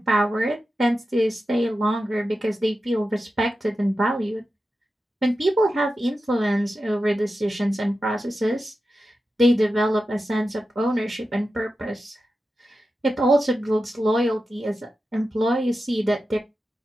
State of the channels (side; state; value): both; normal; correlation 0.91